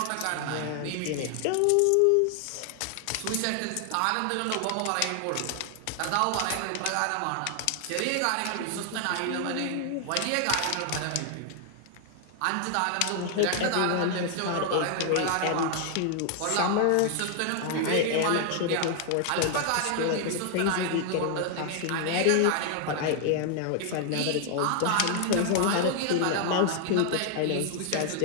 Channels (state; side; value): different; both; correlation 0.00